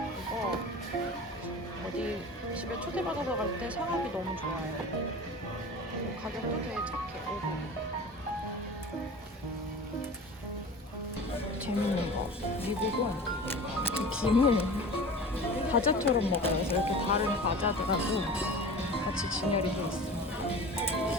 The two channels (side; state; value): both; normal; correlation 0.37